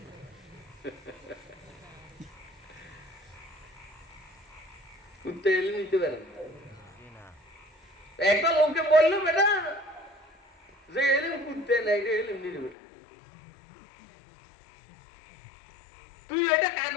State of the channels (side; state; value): right; drops out; at 12.8 s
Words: কুত্তা এলে নিতে পারে একটা লোককে বললো বেটা যে এলেম কুত্তা না, এটা এলেম নিতে বেটা। তুই এটা